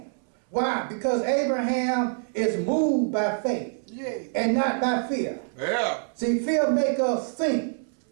Why? Because Abraham is moved by faith Yeah. and not by fear. Yeah. See, fear make us think,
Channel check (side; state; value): left; silent; 61 dB below the other